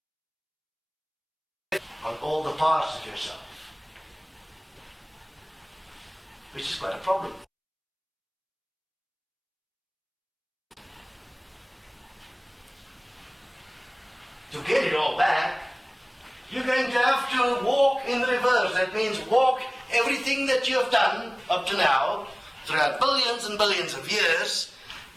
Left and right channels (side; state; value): both; identical; correlation 1.00